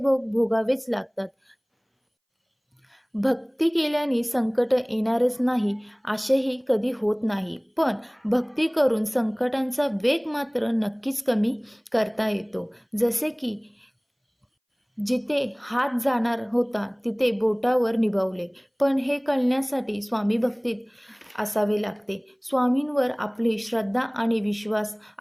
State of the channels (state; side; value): identical; both; correlation 1.00